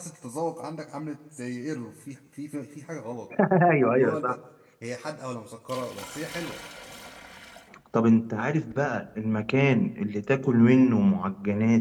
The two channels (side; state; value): both; identical; correlation 1.00